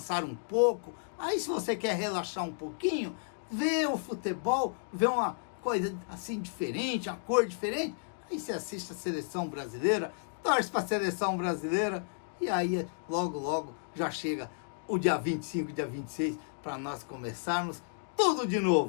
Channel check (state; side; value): silent; right; digital silence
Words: um pouco. Aí se você quer relaxar um pouquinho, vê o futebol, vê uma coisa assim diferente, uma cor diferente, aí você assiste a seleção brasileira, torce para a seleção brasileira, e aí logo logo já chega o dia 25, dia 26, para nós começarmos tudo de